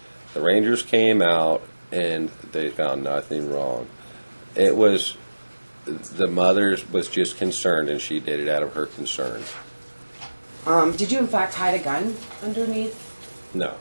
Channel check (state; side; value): inverted; both; correlation -1.00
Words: The Rangers came out and they found nothing wrong. It was, the mother was just concerned and she did it out of her concern. Did you in fact hide a gun underneath No,